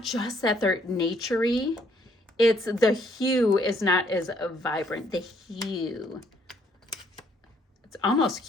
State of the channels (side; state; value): both; normal; correlation 0.67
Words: just that they're naturey. It's the hue is not as vibrant. The hue. It's almost